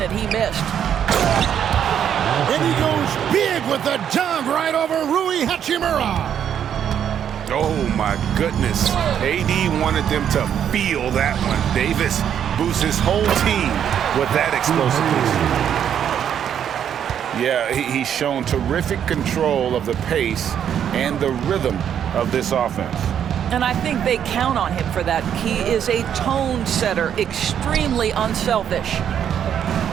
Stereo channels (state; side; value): quieter; left; 9.1 dB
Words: he missed. And he goes big with the dunk right over Rui Hachimura. Oh, my goodness. AD wanted them to feel that one. Davis boosts his whole team with that explosiveness. Yeah, he's shown terrific control of the pace and the rhythm of this offense. And I think they count on him for that. He is a tone setter, extremely unselfish.